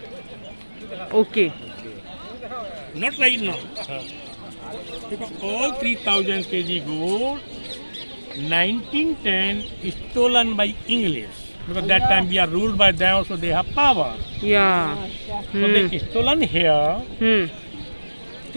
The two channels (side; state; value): both; inverted; correlation -1.00